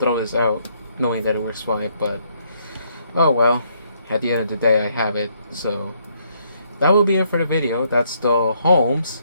this out knowing that it works fine. But oh well, at the end of the day I have it. So that will be it for the video. That's the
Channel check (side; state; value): both; inverted; correlation -0.71